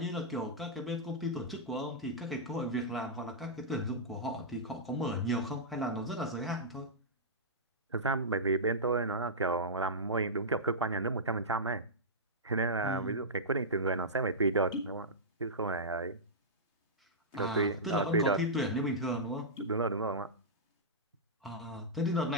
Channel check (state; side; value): normal; both; correlation -0.13